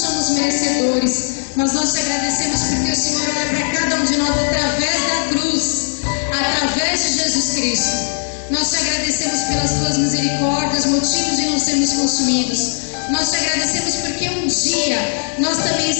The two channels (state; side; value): silent; right; digital silence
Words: merecedores, mas nós te agradecemos porque o Senhor olha para cada um de nós através da cruz, através de Jesus Cristo. Nós te agradecemos pelas Tuas misericórdias, motivos de não sermos consumidos. Nós te agradecemos porque um dia nós também